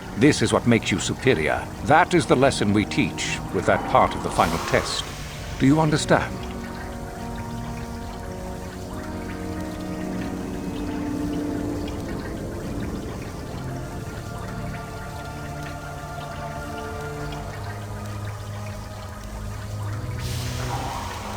This is what makes you superior. That is the lesson we teach with that part of the final test. Do you understand?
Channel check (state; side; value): identical; both; correlation 1.00